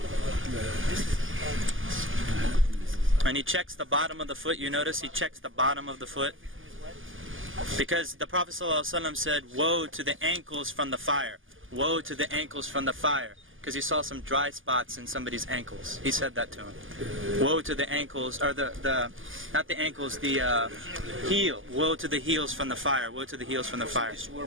And he checks the bottom of the foot. You notice he checks the bottom of the foot, because the Prophet ﷺ said, "Woe to the ankles from the fire! Woe to the ankles from the fire!" Because he saw some dry spots in somebody's ankles. He said that to him. Woe to the ankles, or not the ankles, the heel. Woe to the heels from the fire. Woe to the heels from the fire. This is where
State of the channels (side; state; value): left; late; 0.58 ms